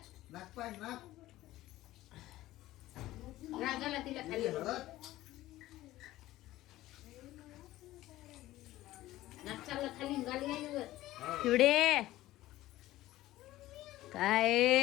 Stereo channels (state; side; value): quieter; right; 16.0 dB